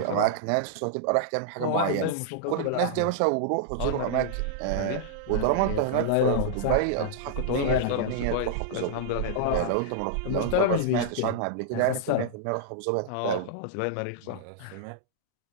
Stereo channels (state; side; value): different; both; correlation -0.02